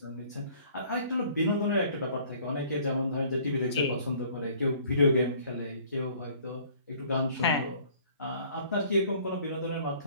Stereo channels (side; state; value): both; inverted; correlation -0.55